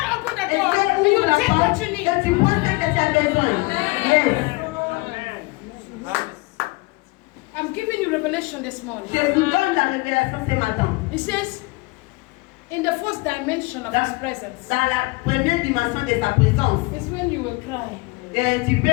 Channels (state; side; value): quieter; right; 25.2 dB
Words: open the Et door, Dieu and you ouvre la take what porte you et need. tu prends ce que tu as besoin. Yes. I'm giving you revelation this morning. Je vous donne la révélation ce matin. It says, in the first dimension of His presence, Dans la première dimension de sa présence, is when you will cry. tu